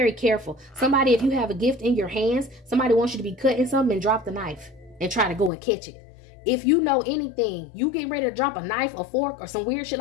careful. Somebody, if you have a gift in your hands, somebody wants you to be cutting something and drop the knife and try to go and catch it. If you know anything, you getting ready to drop a knife or fork or some weird shit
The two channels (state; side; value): drops out; right; at 5.5 s